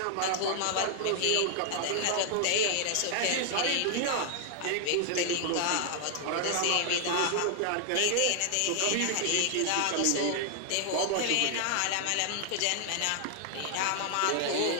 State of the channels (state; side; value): different; both; correlation 0.00